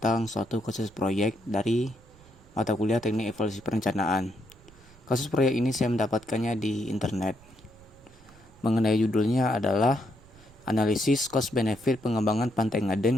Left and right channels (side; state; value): right; noise; rumble, 25 dB below the sound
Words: suatu kasus proyek dari mata kuliah Teknik Evaluasi Perencanaan. Kasus proyek ini saya mendapatkannya di internet. Mengenai judulnya adalah Analisis Cost Benefit Pengembangan Pantai